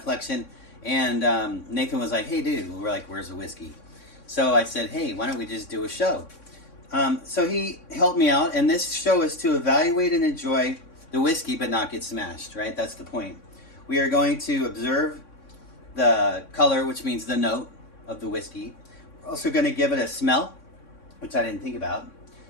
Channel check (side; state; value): right; late; 3.6 ms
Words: and Nathan was like, hey dude, we're like, where's the whiskey? So I said, hey, why don't we just do a show? So he helped me out, and this show is to evaluate and enjoy the whiskey but not get smashed, right? That's the point. We are going to observe the color, which means the note of the whiskey. We're also going to give it a smell, which I didn't think about.